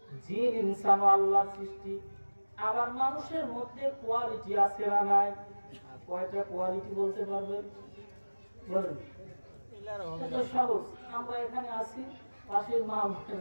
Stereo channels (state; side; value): inverted; both; correlation -1.00